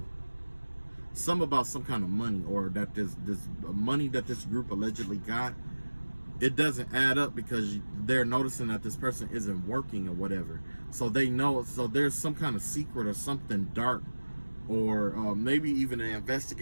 Some about some kind of money, or that this money that this group allegedly got, it doesn't add up because they're noticing that this person isn't working or whatever. So they know, so there's some kind of secret or something dark, or maybe even the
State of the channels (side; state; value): both; inverted; correlation -1.00